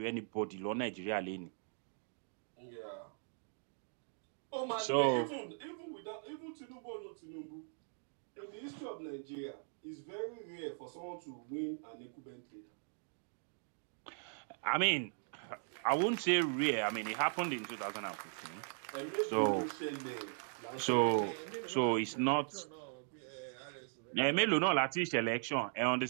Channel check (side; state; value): left; silent; digital silence